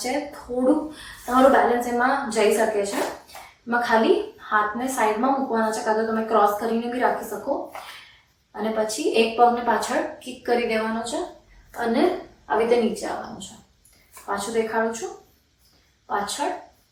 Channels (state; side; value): identical; both; correlation 1.00